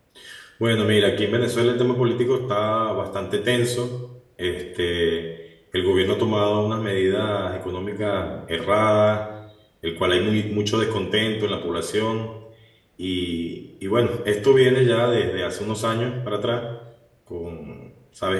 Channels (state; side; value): identical; both; correlation 1.00